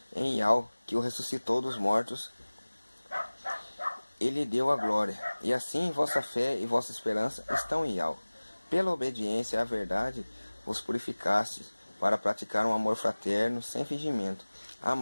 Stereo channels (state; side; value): inverted; both; correlation -1.00